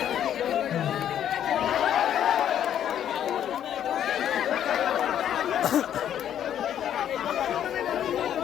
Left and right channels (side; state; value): right; quieter; 10.2 dB